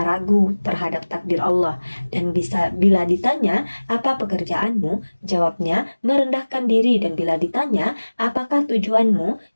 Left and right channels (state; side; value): inverted; both; correlation -1.00